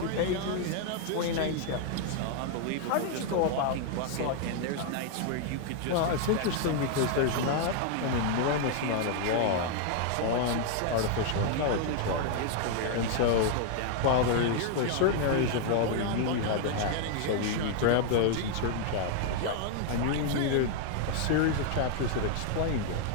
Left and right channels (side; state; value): both; different; correlation 0.00